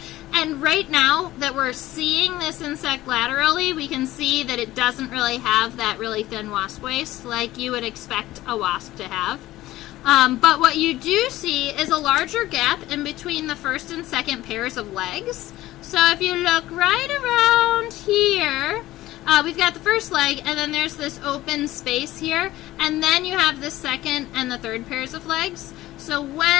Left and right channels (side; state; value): right; quieter; 16.1 dB